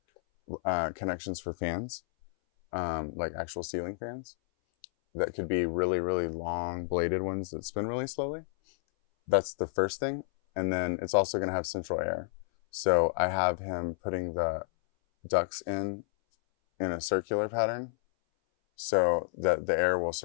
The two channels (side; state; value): right; silent; 57 dB below the other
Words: connections for fans, like actual ceiling fans that could be really, really long bladed ones that spin really slowly. That's the first thing. And then it's also going to have central air. So I have him putting the ducts in a circular pattern so that the air will